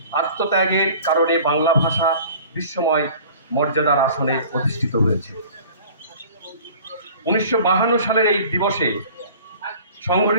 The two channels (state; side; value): inverted; both; correlation -0.46